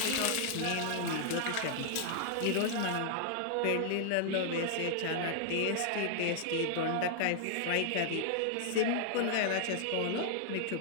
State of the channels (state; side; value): different; both; correlation -0.01